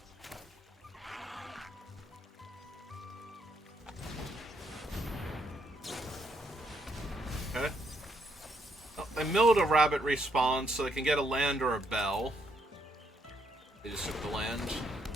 Okay. Oh, they milled a Rabbit Response so they can get a land or a bell. They just took the land.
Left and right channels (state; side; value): normal; both; correlation 0.74